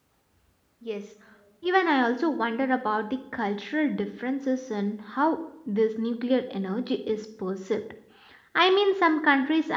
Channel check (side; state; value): both; identical; correlation 1.00